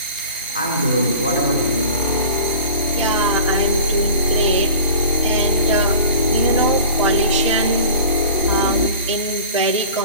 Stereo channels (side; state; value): both; inverted; correlation -0.40